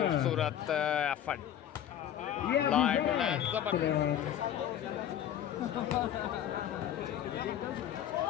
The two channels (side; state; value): right; quieter; 10.5 dB